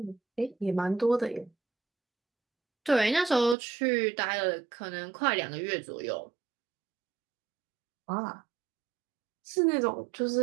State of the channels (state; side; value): drops out; left; at 3.6 s